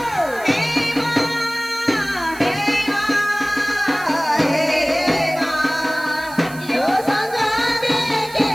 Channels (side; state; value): right; noise; hiss, 18 dB below the sound